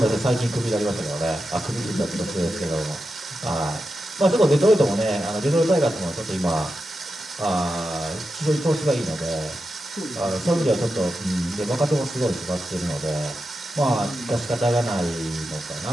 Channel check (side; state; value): both; normal; correlation 0.89